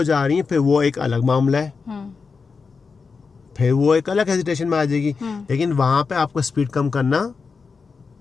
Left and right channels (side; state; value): right; quieter; 5.0 dB